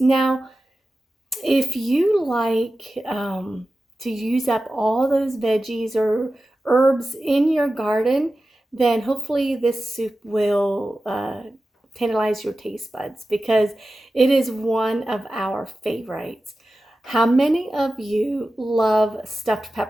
if you like to use up all those veggies or herbs in your garden, then hopefully this soup will tantalize your taste buds because it is one of our favorites. How many of you love stuffed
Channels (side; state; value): both; normal; correlation 0.94